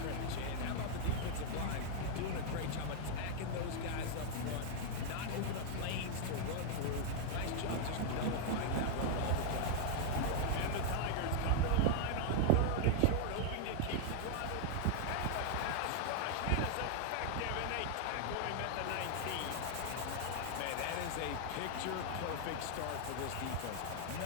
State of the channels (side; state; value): both; different; correlation 0.00